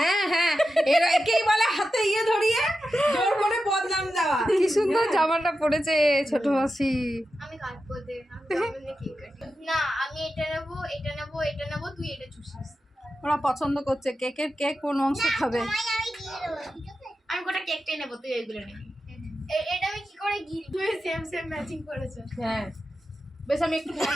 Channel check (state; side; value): normal; both; correlation 0.91